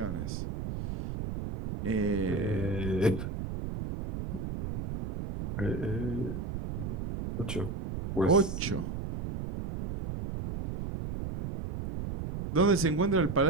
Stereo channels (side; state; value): right; noise; rumble, 5 dB below the sound